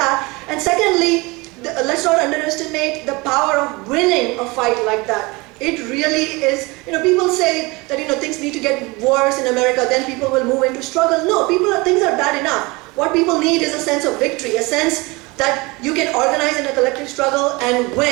And secondly, let's not underestimate the power of winning a fight like that. It really is, you know, people say that, you know, things need to get worse in America, then people will move into struggle. No, things are bad enough. What people need is a sense of victory, a sense that you can organize in a collective struggle and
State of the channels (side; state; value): left; quieter; 24.8 dB